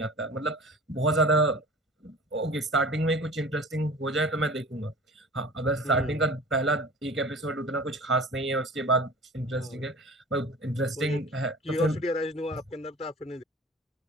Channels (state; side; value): normal; both; correlation 0.41